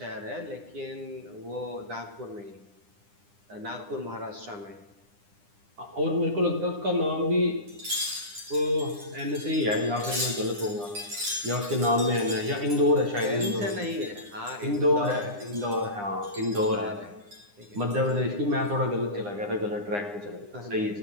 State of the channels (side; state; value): left; late; 9.8 ms